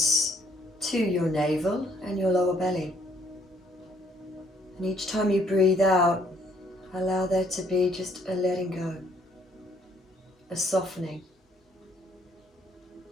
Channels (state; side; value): normal; both; correlation 0.65